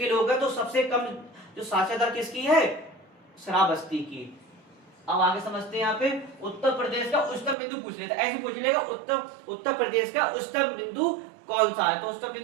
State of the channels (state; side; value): drops out; left; at 7.6 s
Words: लोग हैं, तो सबसे कम जो साक्षरता दर किसकी है? श्रावस्ती की। अब आगे समझते हैं। यहाँ पे उत्तर प्रदेश का उच्चतम बिंदु पूछ लेता है। ऐसे पूछ लेगा उत्तर प्रदेश का उच्चतम बिंदु कौन सा है? तो उच्चतम